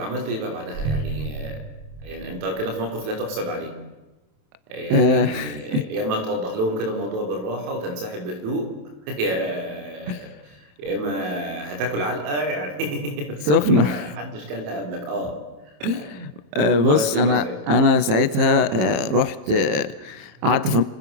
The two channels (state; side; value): late; left; 27 ms